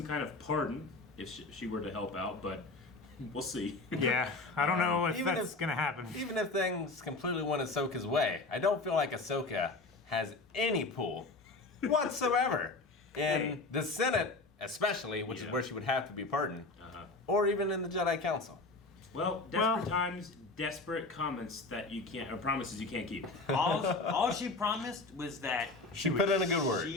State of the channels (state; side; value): quieter; right; 3.4 dB